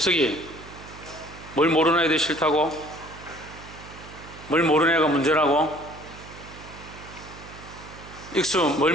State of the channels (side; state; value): right; noise; hum, 17 dB below the sound